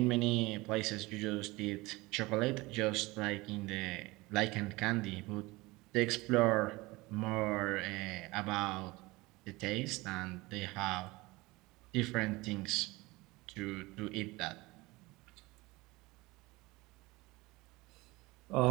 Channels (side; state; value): left; quieter; 22.0 dB